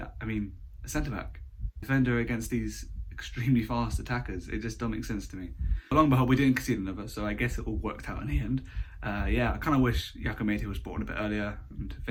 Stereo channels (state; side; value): identical; both; correlation 1.00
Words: I mean, a centre-back, defender against these extremely fast attackers, it just don't make sense to me. But long and behold, we didn't concede another, so I guess it all worked out in the end. Yeah, I kind of wish Yakamete was brought on a bit earlier, and if